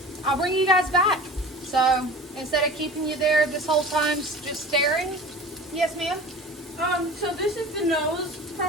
I'll bring you guys back. So instead of keeping you there this whole time just staring. Yes, ma'am? So this is the nose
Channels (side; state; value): both; normal; correlation 0.38